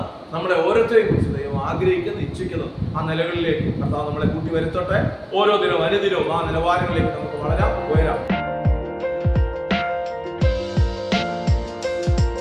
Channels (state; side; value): identical; both; correlation 1.00